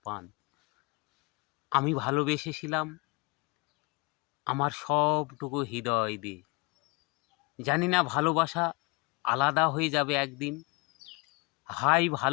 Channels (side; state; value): right; quieter; 28.0 dB